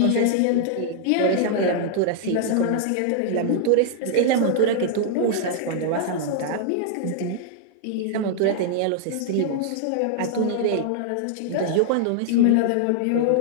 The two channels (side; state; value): both; different; correlation -0.01